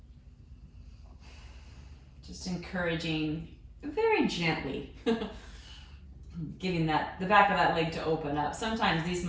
Just encouraging very gently, giving the back of that leg to open up. Sometimes these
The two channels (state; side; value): identical; both; correlation 1.00